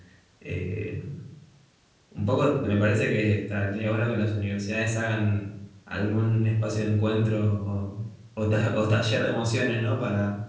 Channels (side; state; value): both; identical; correlation 1.00